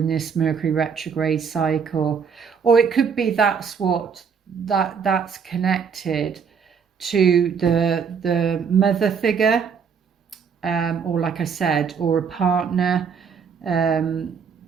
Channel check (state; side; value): quieter; left; 6.4 dB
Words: this Mercury retrograde cycle. Or it could be that's connected to the mother figure, or like I said, or a partner